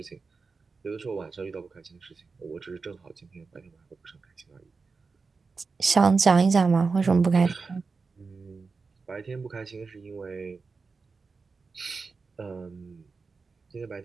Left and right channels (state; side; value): quieter; left; 4.5 dB